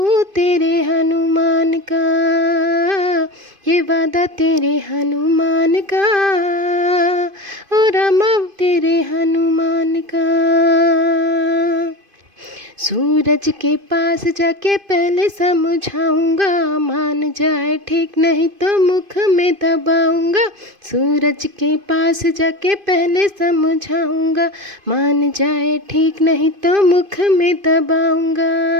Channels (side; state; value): left; late; 2.5 ms